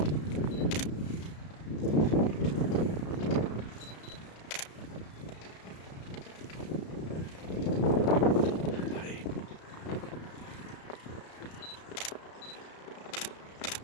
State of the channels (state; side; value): late; right; 33 ms